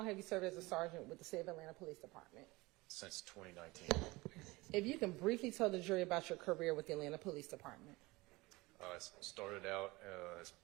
have you served as a sergeant with the City of Atlanta Police Department? since 2019. If you can briefly tell the jury about your career with the Atlanta Police Department. I started out as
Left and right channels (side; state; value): left; quieter; 22.1 dB